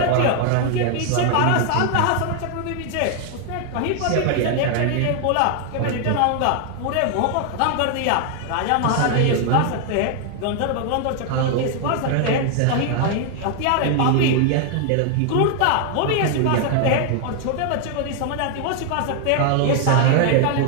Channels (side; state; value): both; different; correlation 0.00